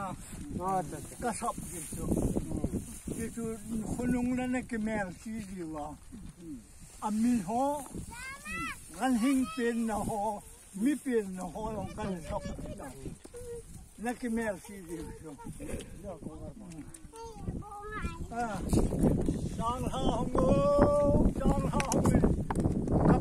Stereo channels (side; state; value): both; identical; correlation 1.00